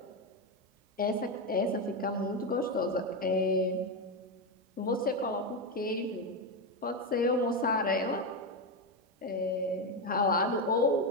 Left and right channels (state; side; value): normal; both; correlation 0.10